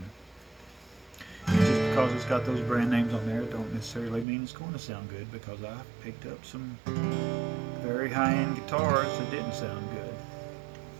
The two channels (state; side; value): drops out; left; at 4.2 s